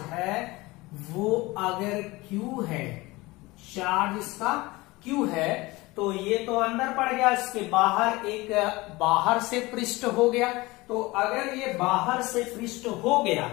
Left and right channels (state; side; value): quieter; right; 21.5 dB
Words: है वो अगर Q है, चार्ज इसका Q है, तो ये तो अंदर पड़ गया, इसके बाहर एक बाहर से पृष्ठ हो गया। तो अगर ये बाहर से पृष्ठ हो गया